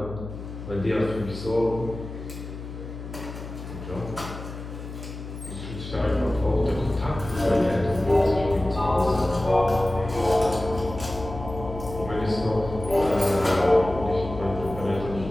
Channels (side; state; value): left; noise; hum, 10 dB below the sound